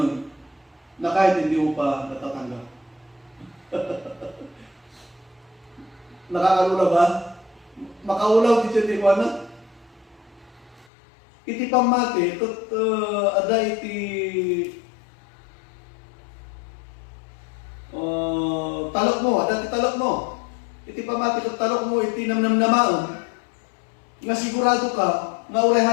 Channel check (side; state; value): right; drops out; at 10.9 s